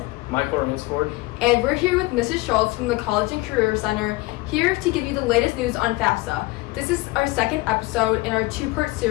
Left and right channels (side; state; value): right; quieter; 21.5 dB